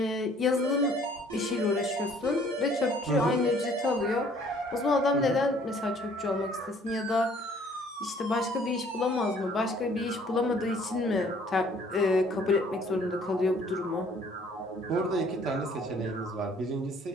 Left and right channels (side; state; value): both; normal; correlation 0.58